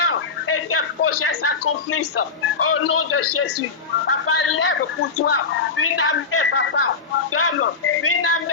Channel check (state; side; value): quieter; right; 4.8 dB